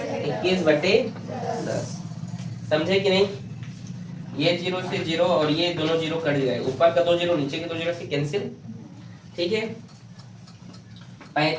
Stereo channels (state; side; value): identical; both; correlation 1.00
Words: 21/10, समझे कि नहीं। ये 0 से 0 और ये दोनों 0 कट गए, ऊपर का 2 0 नीचे के 2 0 से कैंसिल, ठीक है।